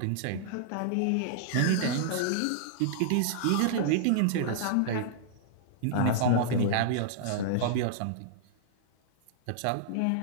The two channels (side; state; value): both; different; correlation -0.02